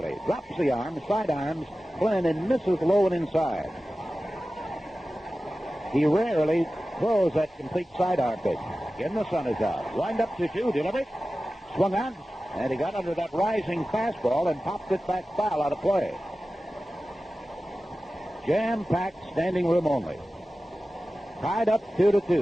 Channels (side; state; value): both; normal; correlation 0.95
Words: Drops the arm, side arms, Flynn, and misses low and inside. He rarely throws that complete sidearm pitch. Again, the sun is out. Wind up to 2, delivery. Swung on, and he got under that rising fastball and popped it back foul out of play. Jam-packed, standing room only. Tied up